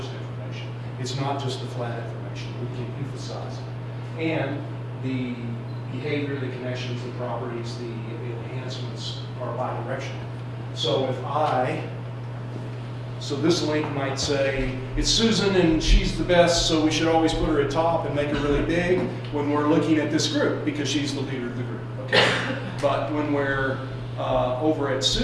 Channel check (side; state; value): both; identical; correlation 1.00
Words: information. It's not just the flat information. We can emphasize it. And the behavior, the connections, the properties, the enhancements are bidirectional. So so this link might say, it's Susan and she's the best, so we should always put her at top and make her really big when we're looking at this group, because she's the leader of the group, okay? But when we're over at